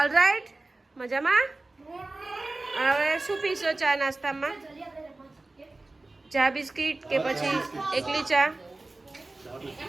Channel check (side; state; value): left; quieter; 3.1 dB